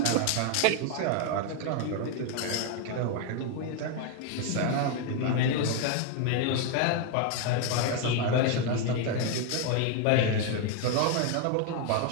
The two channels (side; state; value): both; different; correlation 0.01